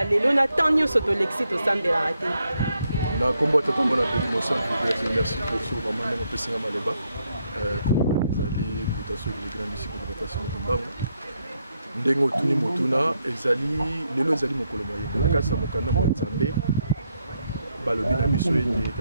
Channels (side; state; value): both; inverted; correlation -0.78